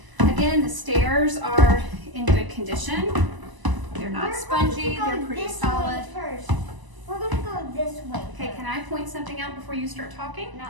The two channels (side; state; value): left; late; 1.0 ms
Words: Again, the stairs are in good condition. They're not We're going to spongy, go they're pretty this solid. way first. we're gonna go this way. Okay, can I point something out before you start talking?